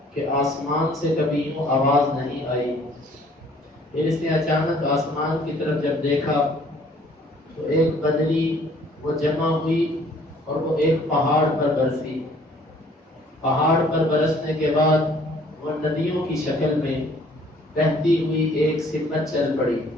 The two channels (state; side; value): normal; both; correlation 0.57